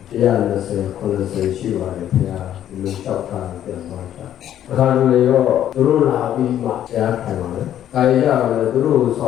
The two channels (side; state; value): right; quieter; 11.1 dB